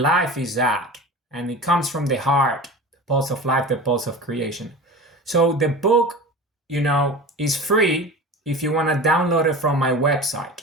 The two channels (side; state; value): both; normal; correlation 0.33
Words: life is that. And it comes from the heart, the pulse of life, the pulse of creation. So the book, is free if you want to download it from my website.